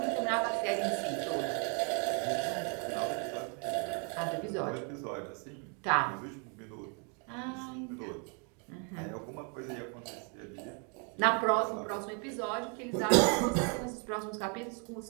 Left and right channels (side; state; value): left; quieter; 37.9 dB